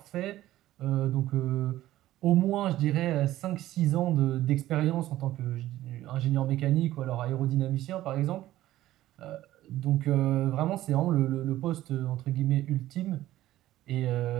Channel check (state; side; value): quieter; left; 14.7 dB